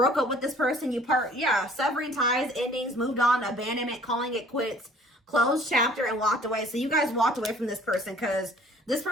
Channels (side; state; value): both; normal; correlation 0.54